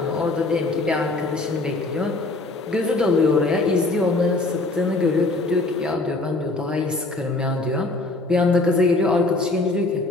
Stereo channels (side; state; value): right; quieter; 3.1 dB